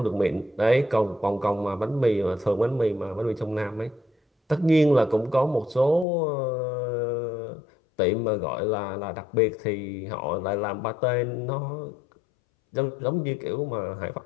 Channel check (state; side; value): drops out; right; at 6.1 s